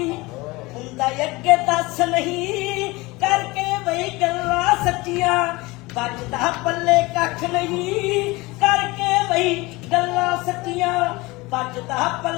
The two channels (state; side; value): quieter; right; 22.6 dB